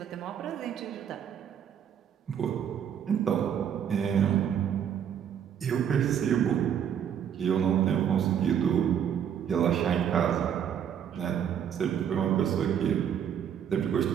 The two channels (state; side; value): quieter; left; 8.8 dB